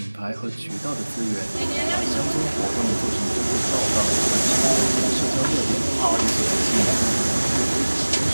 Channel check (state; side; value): inverted; both; correlation -1.00